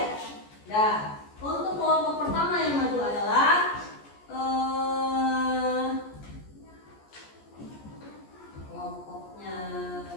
Nah, untuk kelompok pertama yang maju adalah kelompoknya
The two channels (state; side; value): late; right; 14 ms